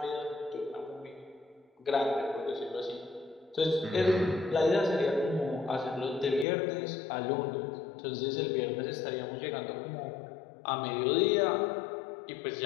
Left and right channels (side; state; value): right; drops out; at 6.5 s